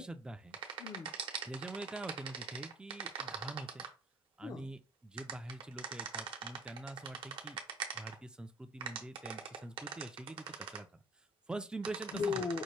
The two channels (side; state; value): both; normal; correlation 0.51